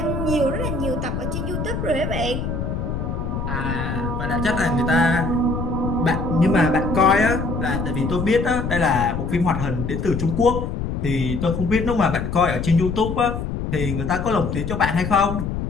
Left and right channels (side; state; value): left; noise; rumble, 3 dB below the sound